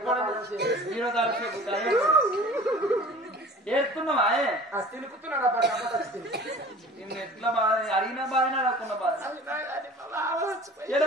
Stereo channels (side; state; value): both; normal; correlation 0.44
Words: ఏడుతున్నావా తినుకుతున్నాడు ఎట్లా బాధ అడిగిన బాధ అడగకున్న బాధ